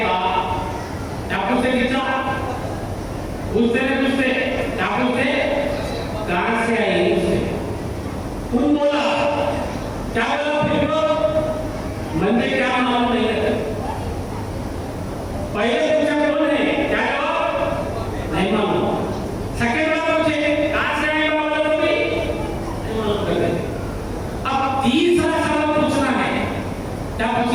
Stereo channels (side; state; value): both; identical; correlation 1.00